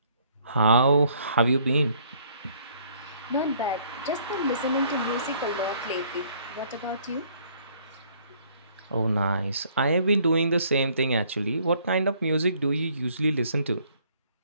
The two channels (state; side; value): inverted; both; correlation -0.62